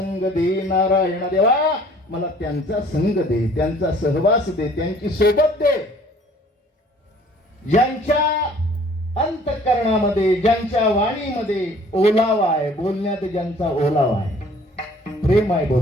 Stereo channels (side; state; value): both; normal; correlation 0.54